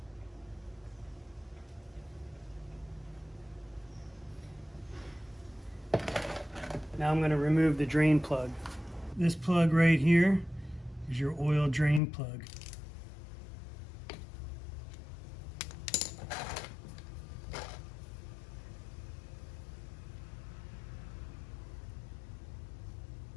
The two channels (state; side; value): drops out; right; at 12.0 s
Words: Now I'm going to remove the drain plug. This plug right here is your oil drain plug.